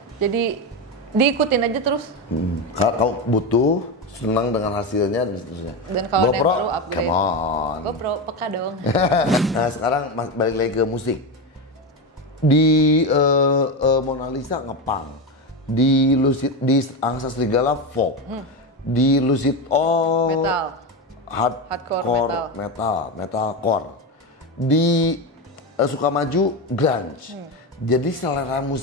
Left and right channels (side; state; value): both; normal; correlation 0.16